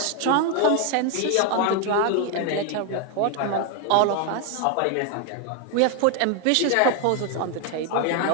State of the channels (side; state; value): both; different; correlation 0.01